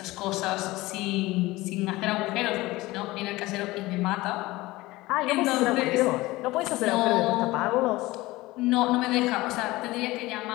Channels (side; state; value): right; quieter; 19.6 dB